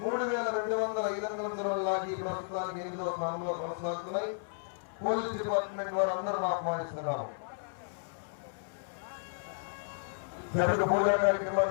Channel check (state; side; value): silent; right; 56 dB below the other